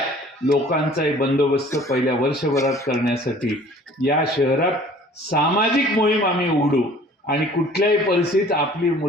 लोकांचाही बंदोबस्त पहिल्या वर्षभरात करण्यासाठी या शहरात सामाजिक मोहीम आम्ही उघडू. आणि कुठल्याही परिस्थितीत आपली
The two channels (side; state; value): both; normal; correlation 0.51